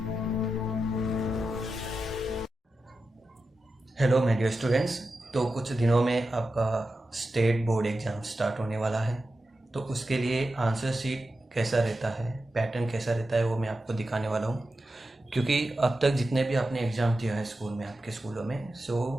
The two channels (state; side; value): normal; both; correlation 0.91